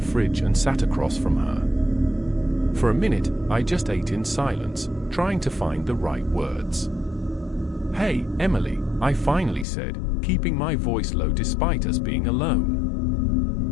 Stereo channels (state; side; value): drops out; right; at 9.7 s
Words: and sat across from her. For a minute, I just ate in silence, trying to find the right words. "Hey, Emily," I finally said, keeping my voice low despite us being